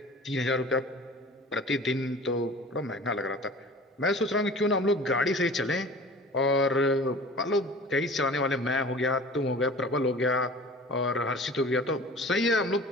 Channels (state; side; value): normal; both; correlation 0.42